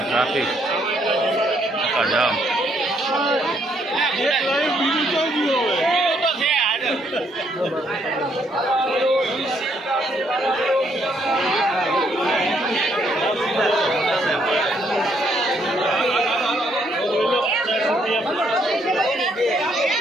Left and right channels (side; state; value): both; normal; correlation 0.71